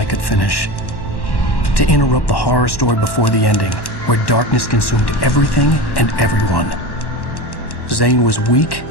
could finish, to interrupt the horror story before the ending, where darkness consumed everything and everyone. Zane was weak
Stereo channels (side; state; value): right; late; 1.1 ms